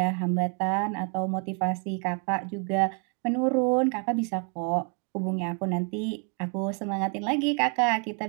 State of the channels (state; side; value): quieter; left; 38.3 dB